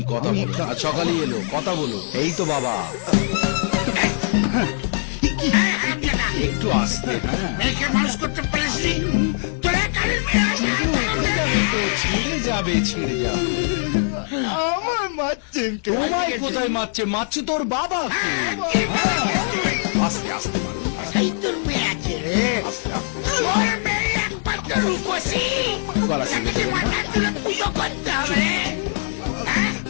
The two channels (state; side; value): silent; right; 56 dB below the other